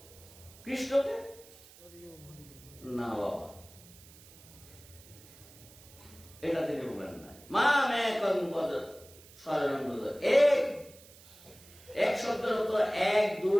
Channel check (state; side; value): noise; right; hiss, 22 dB below the sound